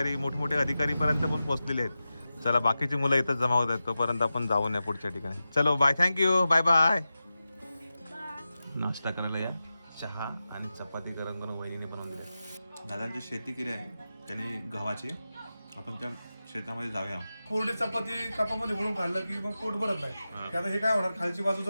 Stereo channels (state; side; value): inverted; both; correlation -0.93